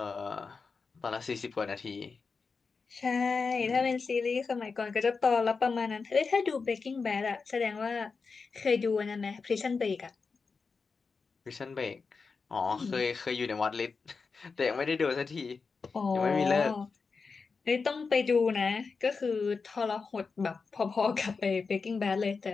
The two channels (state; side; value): quieter; right; 4.8 dB